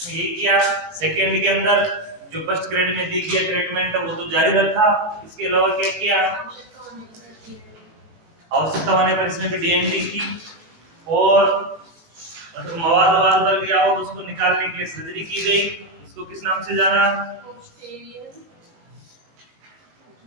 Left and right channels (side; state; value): left; late; 19 ms